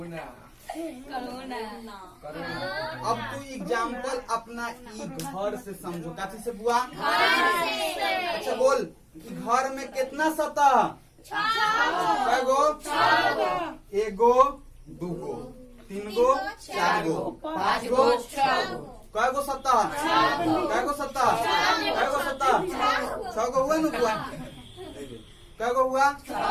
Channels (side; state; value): both; identical; correlation 1.00